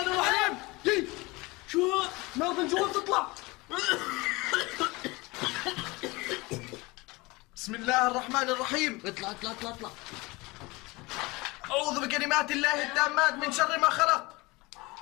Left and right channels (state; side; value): quieter; right; 23.5 dB